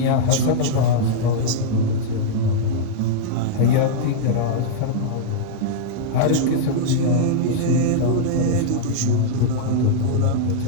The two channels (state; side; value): different; both; correlation -0.02